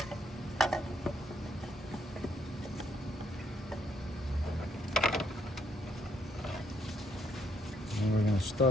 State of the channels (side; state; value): both; normal; correlation 0.71